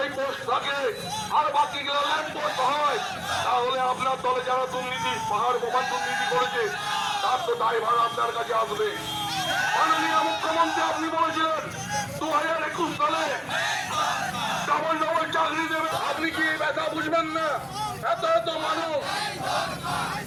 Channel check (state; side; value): identical; both; correlation 1.00